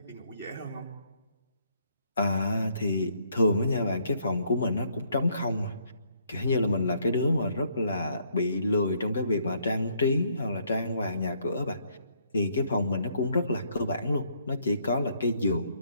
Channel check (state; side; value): inverted; both; correlation -0.68